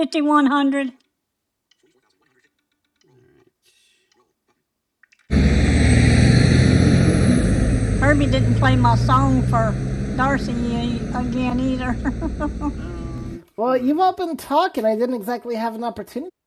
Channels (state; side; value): identical; both; correlation 1.00